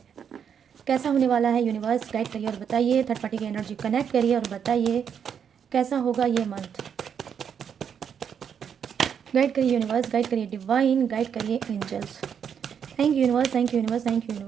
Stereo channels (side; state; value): left; quieter; 7.7 dB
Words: कैसा होने वाला है। यूनिवर्स गाइड करिए और बताइए, थर्ड पार्टी की एनर्जी कनेक्ट करिए और बताइए कैसा होगा ये मंथ। गाइड करिए यूनिवर्स, गाइड करिए डिवाइन, गाइड करिए angels. Thank you universe, thank you universe, thank you